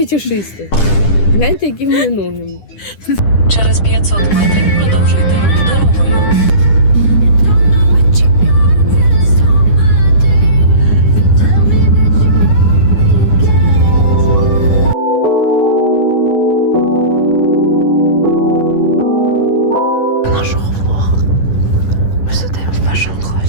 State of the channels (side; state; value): right; late; 10 ms